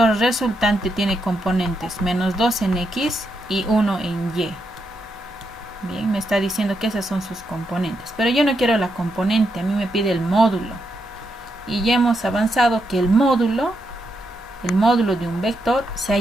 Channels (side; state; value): both; normal; correlation 0.82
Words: resultante tiene componentes menos 2 en X y 1 en Y. Bien, me está diciendo que esas son sus componentes. Pero yo no quiero la componente, a mí me pide el módulo. Y ya hemos avanzado que el módulo de un vector se